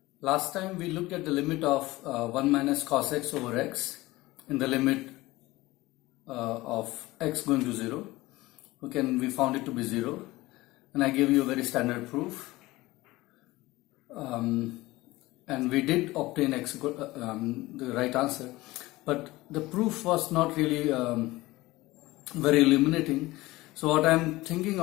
last time we looked at the limit of 1 minus cos x over x in the limit of x going to 0. Okay, and we found it to be 0, and I gave you a very standard proof, and we did obtain x the right answer, but the proof was not really very illuminating. So what I'm thinking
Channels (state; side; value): quieter; right; 19.3 dB